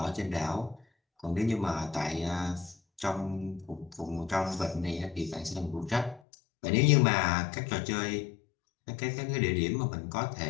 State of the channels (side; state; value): right; drops out; at 6.2 s